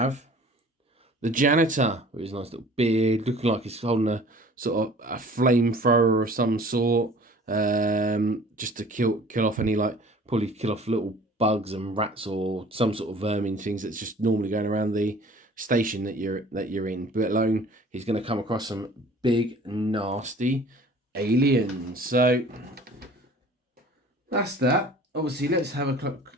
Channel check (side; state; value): both; normal; correlation 0.48